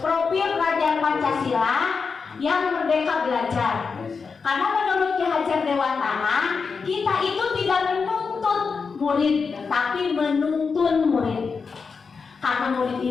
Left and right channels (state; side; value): quieter; right; 5.2 dB